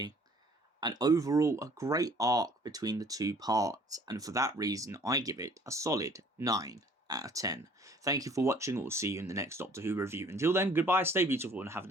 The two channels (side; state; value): both; normal; correlation 0.55